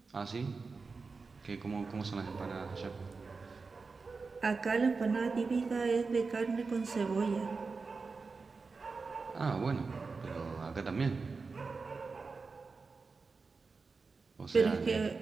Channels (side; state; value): left; quieter; 4.4 dB